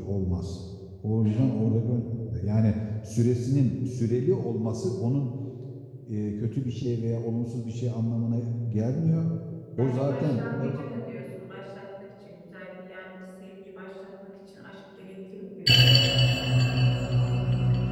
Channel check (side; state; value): both; identical; correlation 1.00